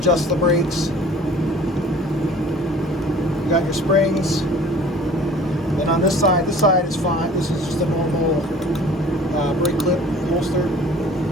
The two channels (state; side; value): normal; both; correlation 0.48